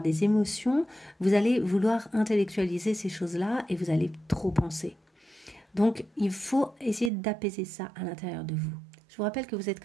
des émotions, vous allez vouloir intellectualiser ces choses-là et vous allez trop penser. Donc, il faut essayer d'apaiser ça à l'intérieur de vous. Je vous rappelle que vous êtes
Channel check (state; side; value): drops out; left; at 7.1 s